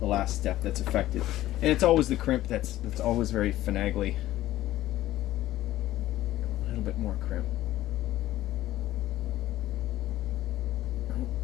last step that's affected, and it's always the crimp that's always very finagly. A little bit more crimp. Oh,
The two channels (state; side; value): quieter; right; 14.8 dB